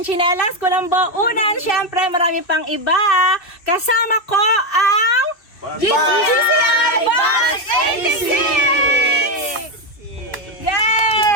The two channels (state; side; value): late; right; 2.6 ms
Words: tsinelas, kulambo, unan, syempre marami pang iba. Kasama ko ang GCI Bus 86!